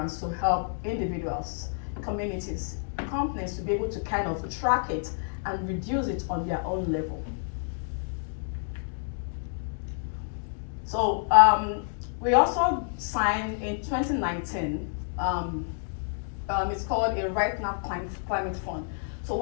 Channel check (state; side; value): silent; right; digital silence